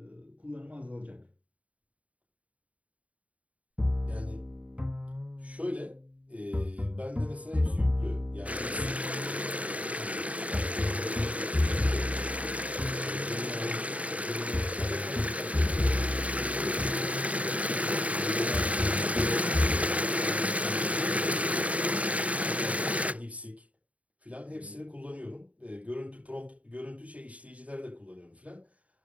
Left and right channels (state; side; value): late; left; 0.067 ms